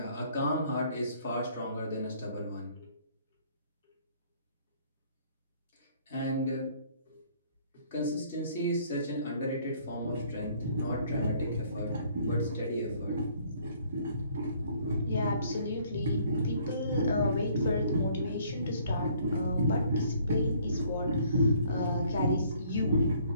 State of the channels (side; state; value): both; inverted; correlation -0.61